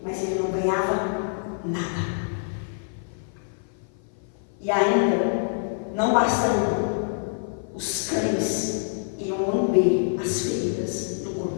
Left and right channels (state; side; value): silent; right; 55 dB below the other